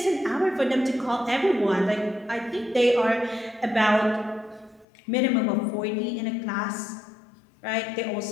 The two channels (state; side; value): drops out; right; at 4.9 s